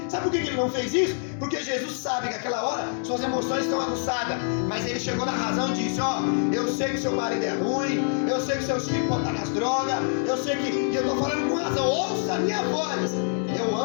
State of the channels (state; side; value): silent; right; 61 dB below the other